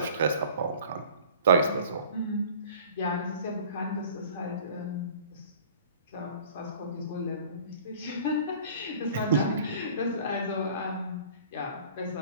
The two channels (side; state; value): both; inverted; correlation -0.47